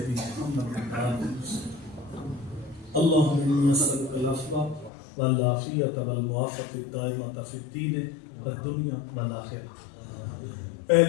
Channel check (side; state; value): right; drops out; at 4.9 s